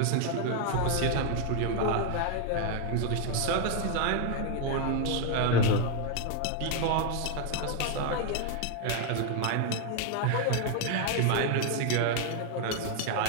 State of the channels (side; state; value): both; different; correlation 0.01